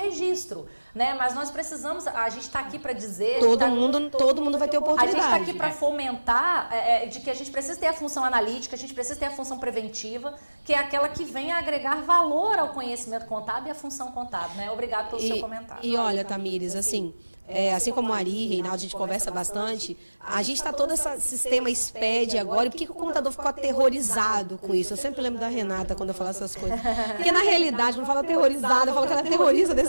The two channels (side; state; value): both; inverted; correlation -1.00